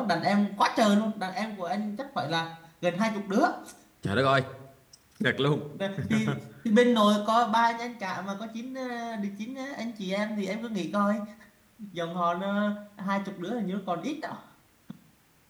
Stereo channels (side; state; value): both; identical; correlation 1.00